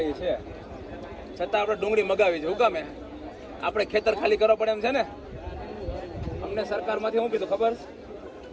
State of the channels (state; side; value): identical; both; correlation 1.00